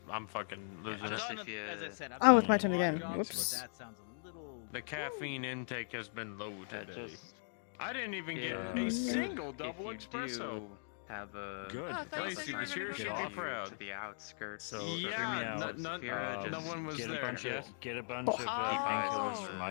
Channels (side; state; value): right; silent; digital silence